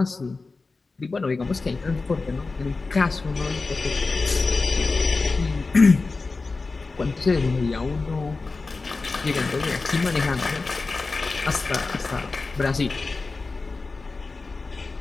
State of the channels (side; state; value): right; quieter; 3.9 dB